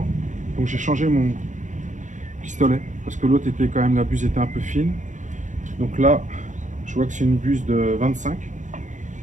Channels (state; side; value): late; left; 0.36 ms